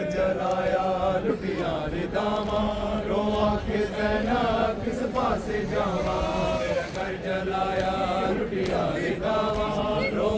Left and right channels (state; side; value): identical; both; correlation 1.00